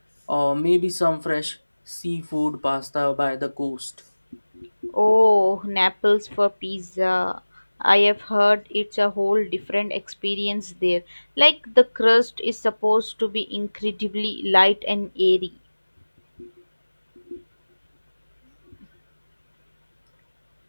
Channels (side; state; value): both; inverted; correlation -1.00